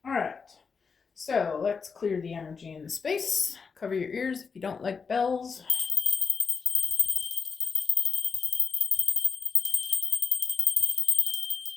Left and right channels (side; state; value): right; quieter; 5.4 dB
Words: All right. So, let's clear the energy in the space. Cover your ears if you don't like bells.